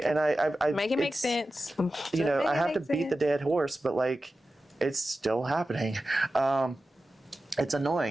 make it make sense. You know, I have to beat the dead horse, but like, it's still happening. It's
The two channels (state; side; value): normal; both; correlation 0.93